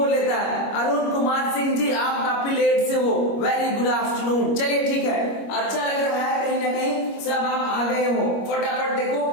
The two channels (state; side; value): late; right; 25 ms